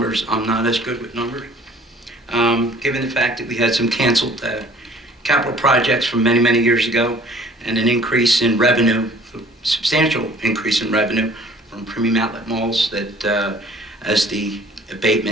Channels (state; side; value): normal; both; correlation 0.53